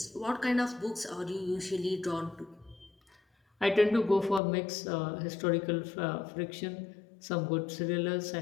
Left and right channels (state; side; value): drops out; right; at 4.4 s